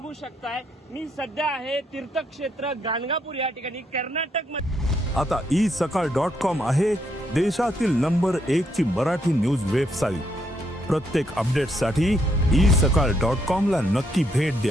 शकताय, मी सध्या आहे तीर्थक्षेत्र गाणगापूर या ठिकाणी कर्नाटक मध्ये। आता isakal.com आहे देशातील नंबर 1 ची मराठी न्यूज वेबसाईट। प्रत्येक अपडेटसाठी isakal.com ला नक्की भेट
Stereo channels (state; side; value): normal; both; correlation 0.75